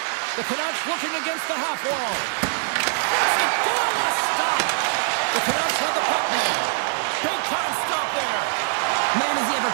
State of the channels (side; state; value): left; silent; 56 dB below the other